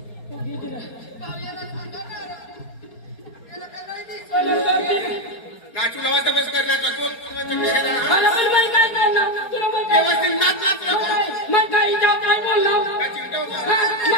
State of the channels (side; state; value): right; late; 4.3 ms